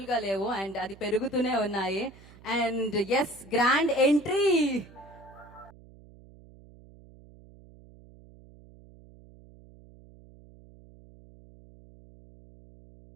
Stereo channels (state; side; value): noise; right; hum, 22 dB below the sound